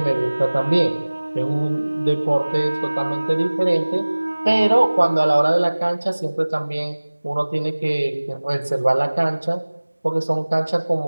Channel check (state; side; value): inverted; both; correlation -1.00